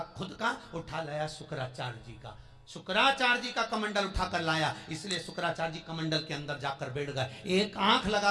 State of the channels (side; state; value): both; identical; correlation 1.00